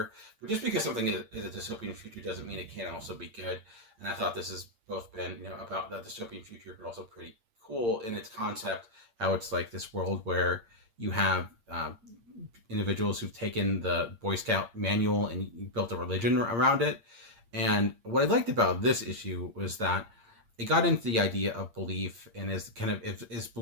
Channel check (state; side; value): late; left; 8.7 ms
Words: but just because something is a dystopian future doesn't mean it can't also be good. And I thought this has both been, about that dystopian future, but also pretty cool in its concept, how it's like this world where you have individuals who've taken the Boy Scout manual and built a religion around it. And what I liked about this issue was that it got into the idea of belief, and is